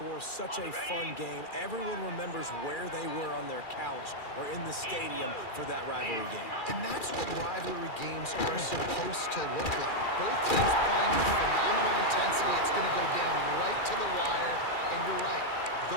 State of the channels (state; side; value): late; right; 2.4 ms